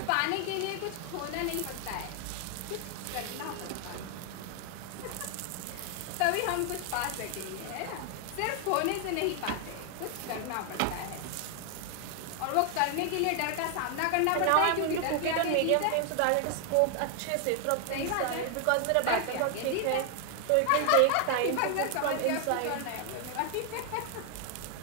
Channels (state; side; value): different; both; correlation 0.00